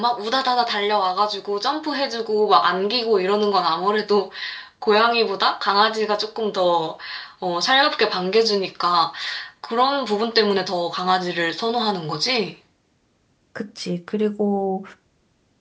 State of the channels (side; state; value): both; identical; correlation 1.00